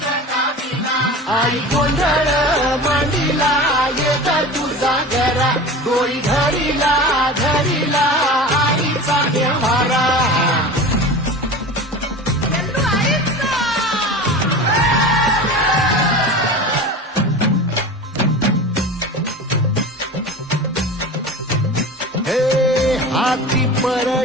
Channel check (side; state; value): both; normal; correlation 0.33